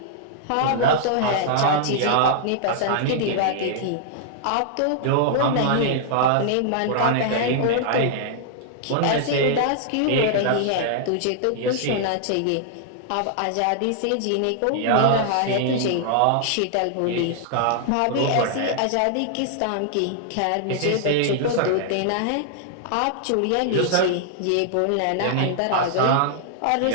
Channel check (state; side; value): different; both; correlation -0.01